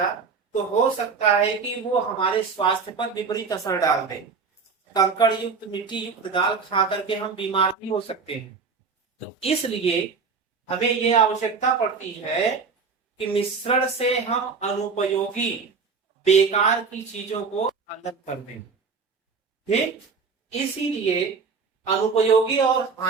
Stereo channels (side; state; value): left; quieter; 5.1 dB